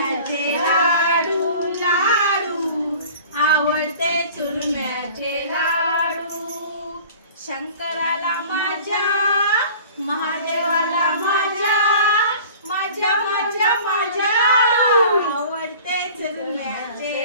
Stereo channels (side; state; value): both; inverted; correlation -0.44